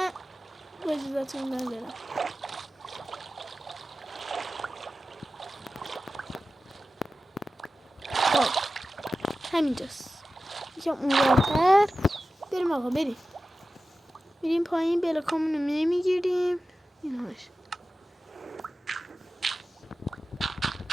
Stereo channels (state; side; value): normal; both; correlation 0.94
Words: با اجازتون ندارم. خب همینجاست. یکم اونورتر بریم آقا. بریم پایین. بلاکامونو نمیگیریم. این همش